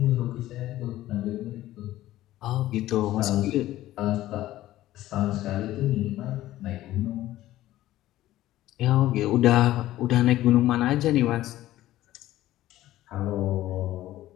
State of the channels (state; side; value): quieter; right; 14.9 dB